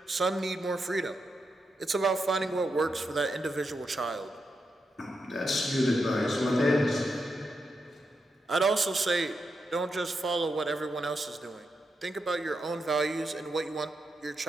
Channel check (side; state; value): both; normal; correlation 0.85